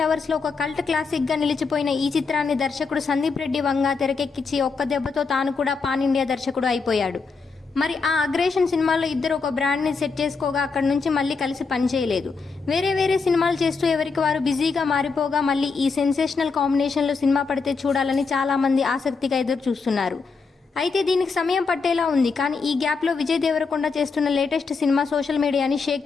లవర్స్లో ఒక కల్ట్ క్లాసిక్గా నిలిచిపోయిన ఈ చిత్రాన్ని దర్శకుడు సందీప్ రెడ్డి వంగ తెరకెక్కించి ఒక్క దెబ్బతో తాను కూడా పాన్ ఇండియా దర్శకుడు అయిపోయాడు. మరి ఆ అగ్రేషన్ సినిమాలో ఇద్దరు ఒక బ్రాండ్ని సెట్ చేసుకోగా అక్కడి నుంచి మళ్ళీ కలిసి పనిచేయలేదు. వేరే సినిమాలు చేస్తూ ఎవరికి వారు బిజీగా మారిపోగా మళ్ళీ ఈ సెన్సేషనల్ కాంబినేషన్లో సినిమా పడితే చూడాలని చాలామంది ఆసక్తిగా ఎదురు చూస్తున్నారు. అయితే దీనికి సమయం పట్టేలా ఉంది. కానీ ఈ గ్యాప్లో విజయ్ దేవరకొండ చేస్తున్న లేటెస్ట్ సినిమా సోషల్ మీడియాని షేక్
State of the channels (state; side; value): quieter; right; 4.7 dB